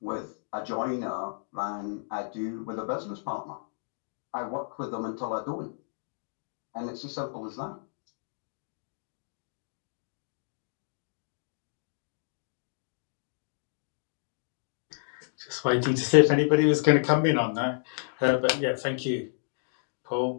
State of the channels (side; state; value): right; silent; digital silence